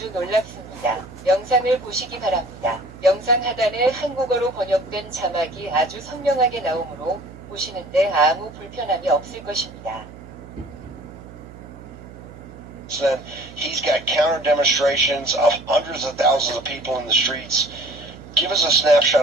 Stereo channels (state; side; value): noise; right; hum, 17 dB below the sound